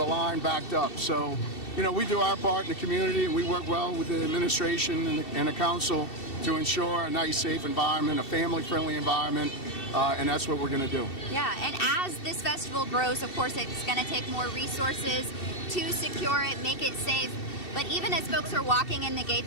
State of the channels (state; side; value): late; right; 2.7 ms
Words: line backed up. So, we do our part in the community, and we work well with the administration and the council to ensure a nice, safe environment, a family-friendly environment, and that's what we're going to do. Yeah, and as this festival grows, of course, it's going to take more resources to secure it, make it safe. But even as folks are walking in the